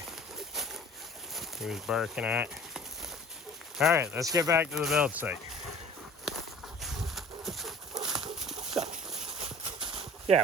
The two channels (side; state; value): both; normal; correlation 0.47